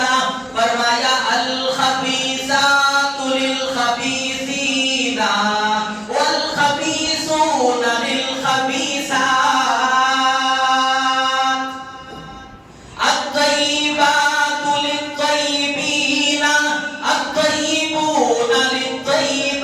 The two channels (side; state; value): both; identical; correlation 1.00